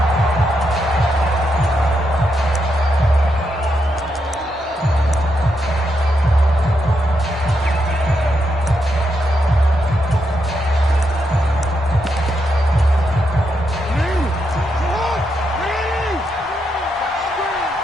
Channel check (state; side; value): normal; both; correlation 0.82